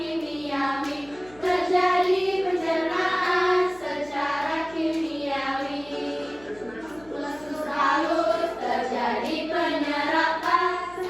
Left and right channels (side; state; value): left; noise; hum, 25 dB below the sound